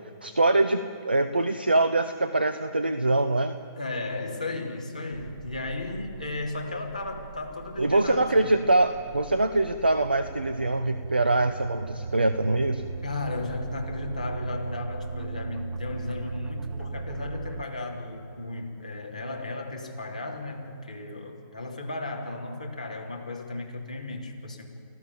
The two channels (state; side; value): inverted; both; correlation -0.81